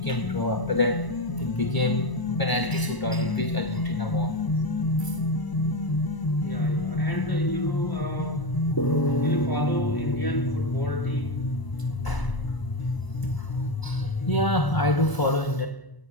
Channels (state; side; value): late; right; 1.0 ms